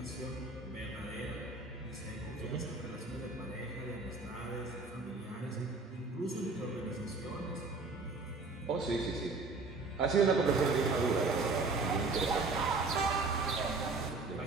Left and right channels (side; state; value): left; quieter; 3.7 dB